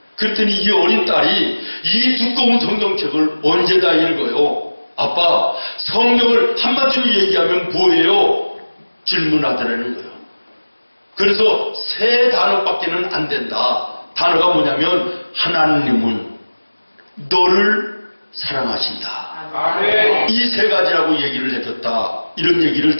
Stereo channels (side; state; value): both; inverted; correlation -1.00